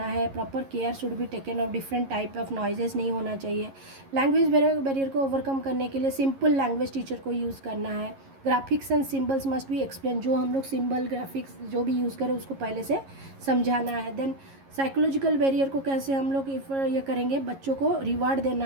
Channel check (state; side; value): late; left; 11 ms